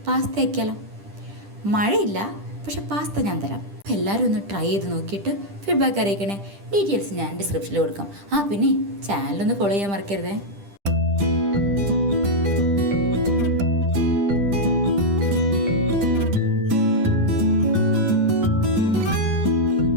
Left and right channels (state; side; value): late; left; 10 ms